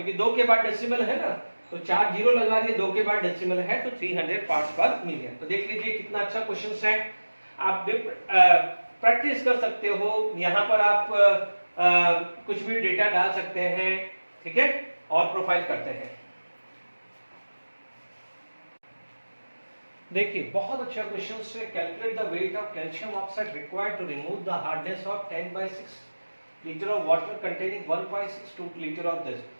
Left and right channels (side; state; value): both; inverted; correlation -1.00